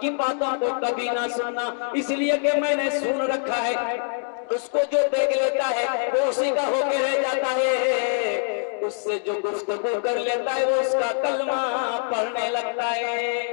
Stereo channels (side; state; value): right; silent; digital silence